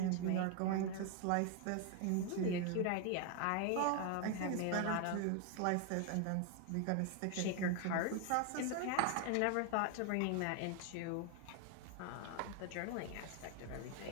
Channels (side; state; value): both; different; correlation 0.01